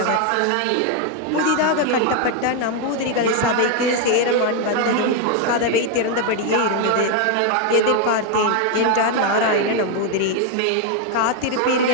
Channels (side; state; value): both; different; correlation 0.01